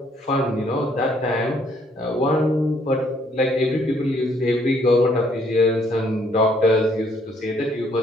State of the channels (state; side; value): normal; both; correlation 0.66